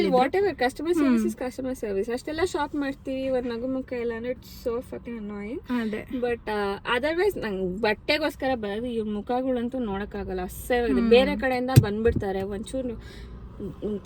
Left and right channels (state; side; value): identical; both; correlation 1.00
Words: What ever, customer service is customer service. ಅಷ್ಟೆಲ್ಲ ಶಾಪ್ ಮಾಡ್ತೀವಿ, ಒಂದು ನಗು ಮುಖ ಇಲ್ಲ ಅಂದ್ರೆ ಇಟ್ಸ್ ಸೋ ಫಕಿಂಗ್ ಅನಾಯಿಂಗ್. ಅದೇ. ಬಟ್ ಅದರ್ವೈಸ್ ನಂಗೆ ಬಟ್ಟೆಗೋಸ್ಕರ ಬರೋದು ಇವ್ರ ಮುಖಗಳಂತೂ ನೋಡಕ್ಕಾಗಲ್ಲ, ಅಸಹ್ಯವಾಗಿದೆ. ಬೇರೆ ಕಡೆಯಿಂದ ಬಂದ್ಬಿಡ್ತಾರೆ, ಒಂಚೂರು